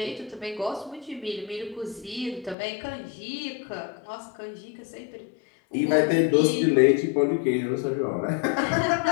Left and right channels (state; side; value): drops out; right; at 2.6 s